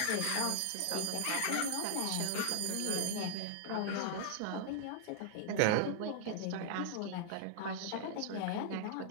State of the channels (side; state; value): both; different; correlation 0.00